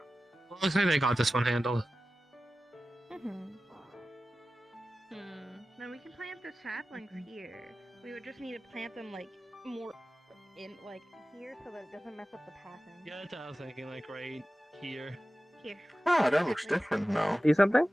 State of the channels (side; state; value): both; normal; correlation 0.95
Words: looks like they got this one handled. Hmm. the saplings here. We would just need to plant them like more in like here so that it doesn't mess up the pattern. Yeah, that's what I was thinking, like right here. Here. Ah, that looks different now. See something?